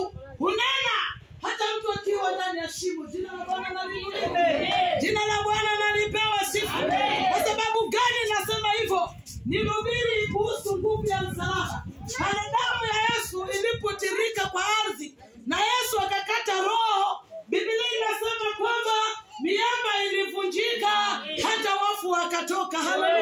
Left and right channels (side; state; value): both; identical; correlation 1.00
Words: hunena hata mtu akiwa ndani ya shimo. Jina la Bwana na liinuliwe. Jina la Bwana na lipewe sifa. Kwa sababu gani nasema hivyo? Nihubiri kuhusu nguvu ya msalaba. Pale damu ya Yesu ilipotirika kwa ardhi na Yesu akakata roho, Biblia inasema kwamba miamba ilivunjika, hata wafu wakatoka.